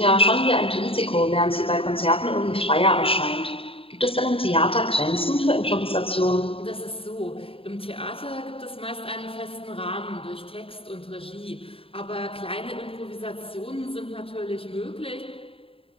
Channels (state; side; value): late; right; 0.27 ms